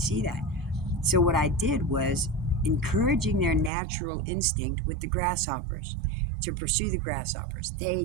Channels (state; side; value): drops out; left; at 3.7 s